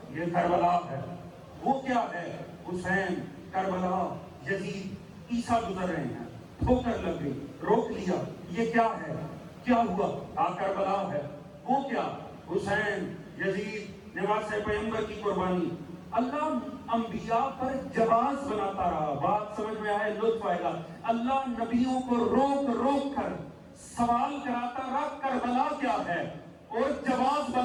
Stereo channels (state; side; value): identical; both; correlation 1.00